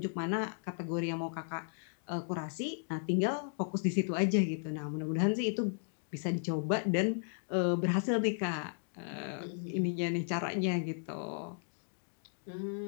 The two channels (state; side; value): silent; right; digital silence